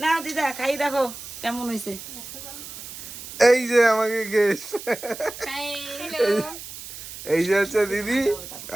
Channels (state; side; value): noise; right; hiss, 12 dB below the sound